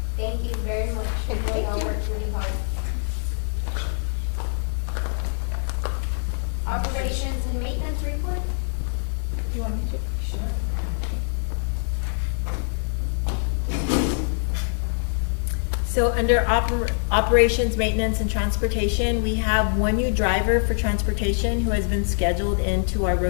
Thank you very much. Okay, You thank all you. worked really hard. Operations and maintenance report? You want me to? Sure. So under operations, maintenance, and transportation, we have 1 new driver for transportation who has been scheduled into our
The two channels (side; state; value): right; silent; 62 dB below the other